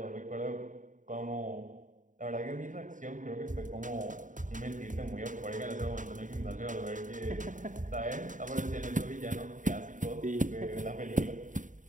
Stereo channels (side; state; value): left; late; 0.37 ms